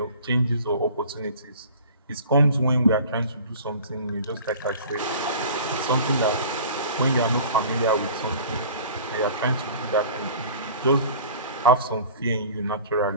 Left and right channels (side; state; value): both; inverted; correlation -0.44